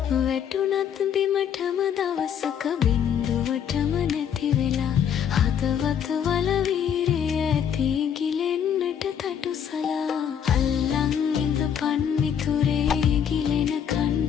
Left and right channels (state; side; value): quieter; right; 8.4 dB